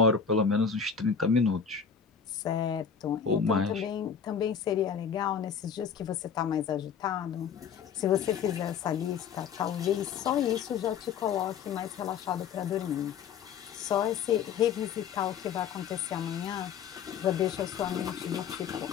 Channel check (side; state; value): right; quieter; 6.9 dB